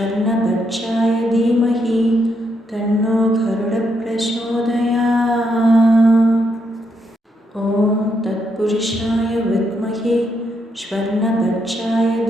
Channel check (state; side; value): normal; both; correlation 0.78